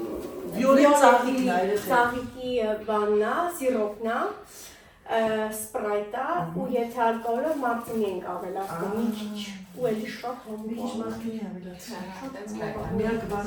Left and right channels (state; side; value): identical; both; correlation 1.00